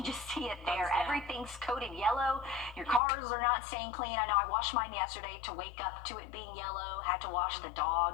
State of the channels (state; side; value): drops out; right; at 3.0 s